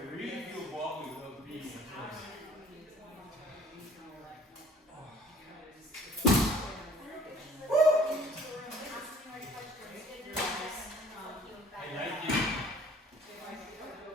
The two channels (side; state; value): both; normal; correlation 0.51